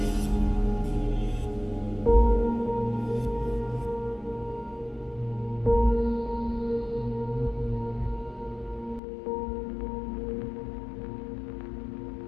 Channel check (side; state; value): right; drops out; at 9.0 s